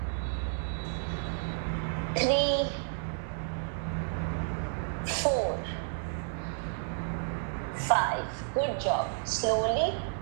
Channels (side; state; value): left; silent; digital silence